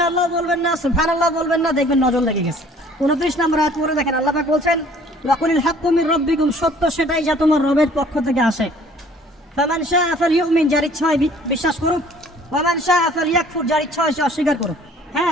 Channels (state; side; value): normal; both; correlation 0.54